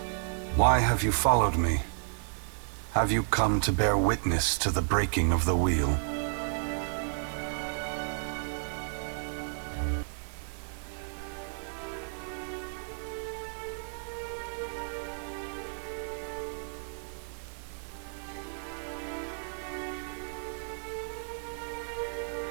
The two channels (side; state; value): left; silent; digital silence